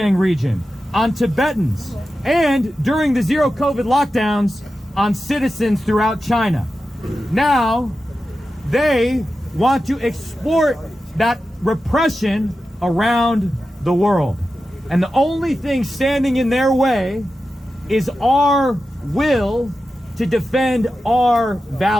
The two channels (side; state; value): both; normal; correlation 0.92